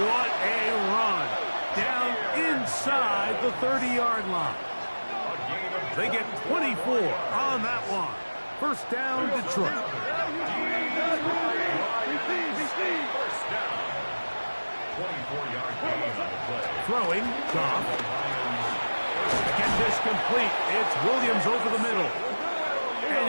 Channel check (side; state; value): both; inverted; correlation -1.00